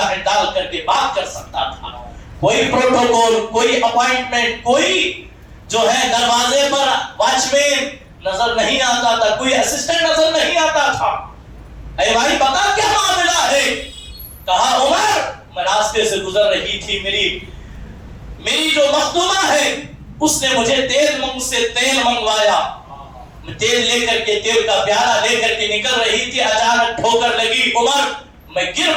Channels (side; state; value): both; identical; correlation 1.00